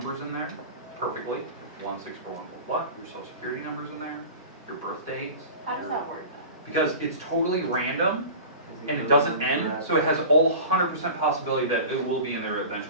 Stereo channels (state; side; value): inverted; both; correlation -0.35